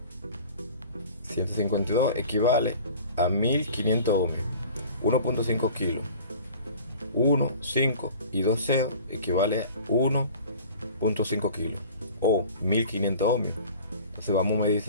$152 equivale a 1500 ohmios, 1.5 kilos. 1, 5 y 2 ceros equivale a 1.5 kilos o 1500 ohmios. Entonces vamos a medir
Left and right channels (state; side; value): inverted; both; correlation -0.44